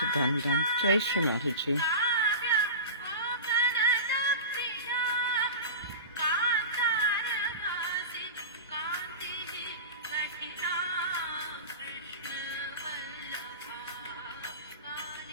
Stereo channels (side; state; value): both; inverted; correlation -0.30